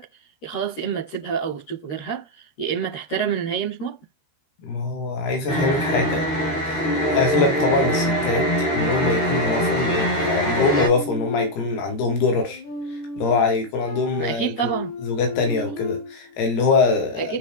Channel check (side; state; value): right; late; 13 ms